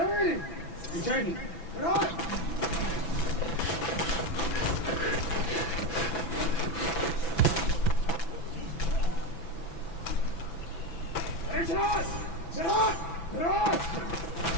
We changed it. Get on! Ready, shot! Get on! Get on!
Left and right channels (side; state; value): right; late; 6.0 ms